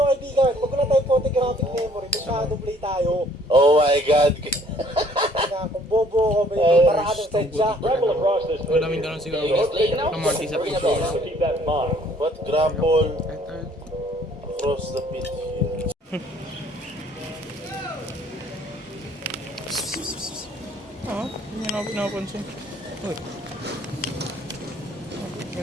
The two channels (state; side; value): normal; both; correlation 0.60